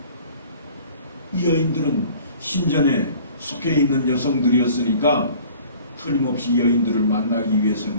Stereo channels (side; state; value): both; inverted; correlation -0.49